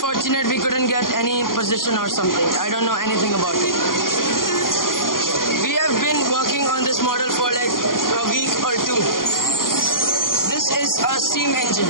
we couldn't get any position or something. I don't know anything about it. We have been working on this model for like a week or two. This is a steam engine.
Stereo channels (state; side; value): late; right; 0.91 ms